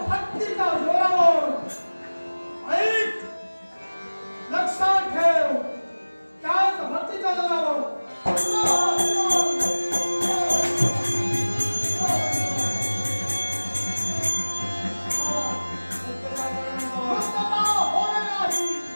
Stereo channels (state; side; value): inverted; both; correlation -1.00